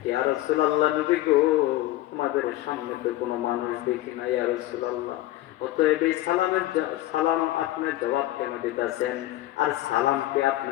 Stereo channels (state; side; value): quieter; right; 16.1 dB